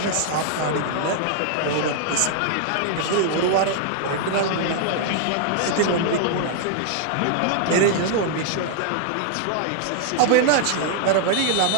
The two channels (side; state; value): both; different; correlation 0.00